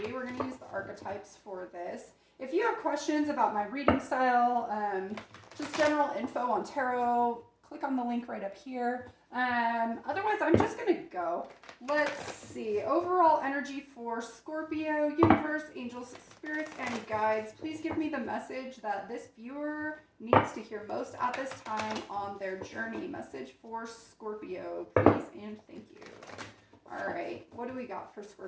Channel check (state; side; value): identical; both; correlation 1.00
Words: We're going to use the archetypes for this. If you have questions about my reading style, just general info on tarot, click on the link right up here. Otherwise, I'm just going to go. Let's see. Overall energy for Scorpio, universe, angels, spirits, and guides. Please give me the message that this viewer needs to hear most at this time on their journey. Message for Scorpio, please and thank you. All right. What do we got for